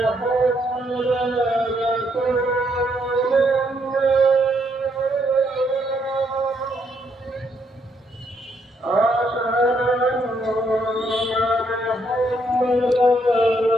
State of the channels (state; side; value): normal; both; correlation 0.73